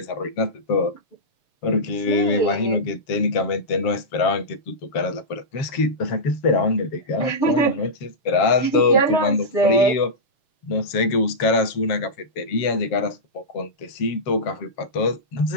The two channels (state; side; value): late; right; 7.4 ms